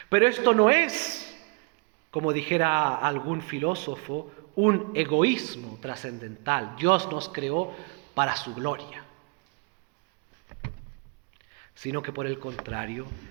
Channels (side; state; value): left; quieter; 32.9 dB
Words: Pero esto no es, como dijera algún filósofo, un egoísmo trascendental. Dios nos creó para su gloria, sino que por el contrario